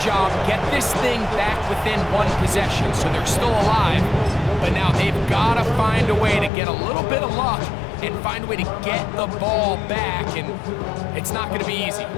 get this thing back within 1 possession, so they're still alive. But now they've got to find a way to get a little bit of luck and find a way to get the ball back, and it's not going to be easy.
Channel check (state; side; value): drops out; right; at 6.5 s